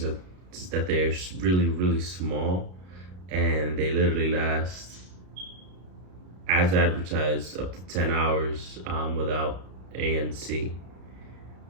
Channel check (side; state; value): left; late; 33 ms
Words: is that they're really small, and they literally last, as advertised, up to 10 hours without ANC.